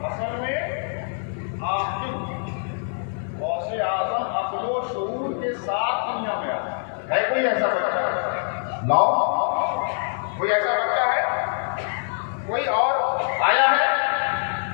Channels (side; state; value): right; silent; digital silence